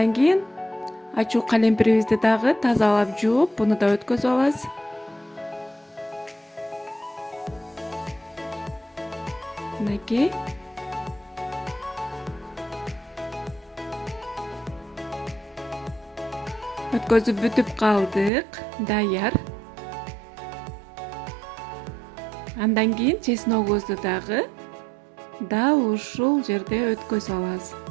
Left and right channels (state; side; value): drops out; left; at 18.3 s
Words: кийин ачуу калемпирибизди дагы тазалап жууп, буну да өткөзүп алабыз. Мынакей. Өткөзүп бүтүп калдык, даяр. Андан кийин чесногубузду дагы дал ушул жерде өткөзүп алабыз.